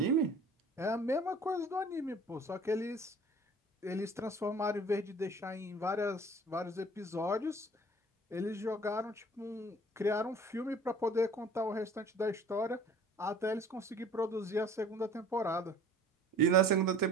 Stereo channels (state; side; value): normal; both; correlation 0.48